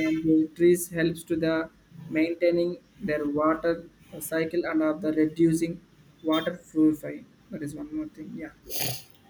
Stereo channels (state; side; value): identical; both; correlation 1.00